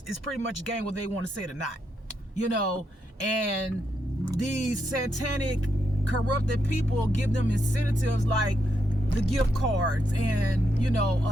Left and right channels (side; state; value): both; normal; correlation 0.81